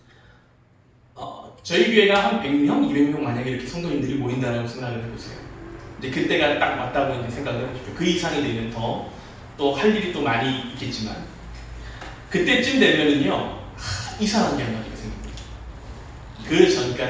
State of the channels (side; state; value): both; identical; correlation 1.00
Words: 저희 교회가 한 100명, 200명 만약에 이렇게 성도님들이 모인다라고 생각을 해보세요. 이제 그때가 딱 왔다고 이제 생각을 해보십시오. 그 이상이 되면 또 할 일이 또 많이 있겠지만 그때쯤 되면은요 이상한 게 하나가 생깁니다. 그